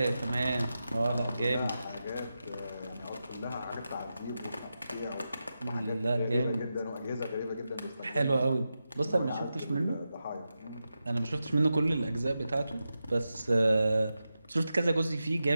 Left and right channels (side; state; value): both; inverted; correlation -0.90